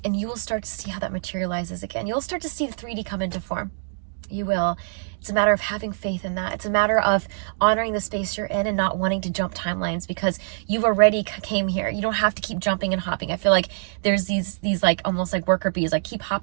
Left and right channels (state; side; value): silent; left; digital silence